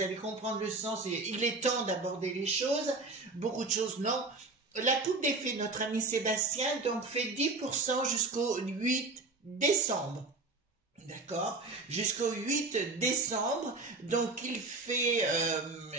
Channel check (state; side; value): quieter; left; 3.4 dB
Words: allez comprendre le sens et il est temps d'aborder les choses. Beaucoup de choses, non. La coupe des fées, notre ami Sébastien, donc fait 10% jusqu'au 8 décembre. D'accord, jusqu'au 8 décembre, donc il fait